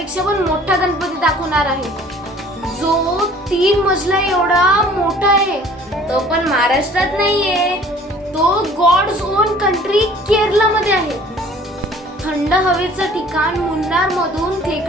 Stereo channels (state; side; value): normal; both; correlation 0.51